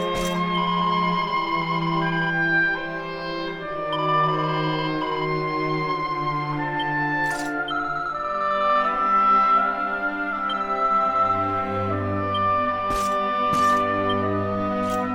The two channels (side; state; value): both; identical; correlation 1.00